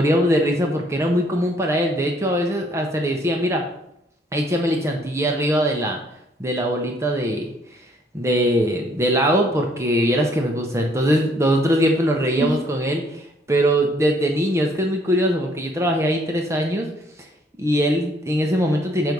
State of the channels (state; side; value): normal; both; correlation 0.65